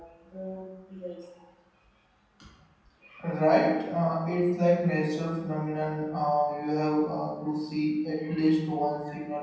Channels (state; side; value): identical; both; correlation 1.00